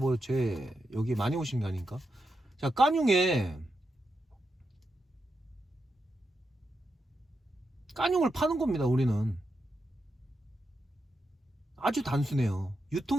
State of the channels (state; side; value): normal; both; correlation 0.86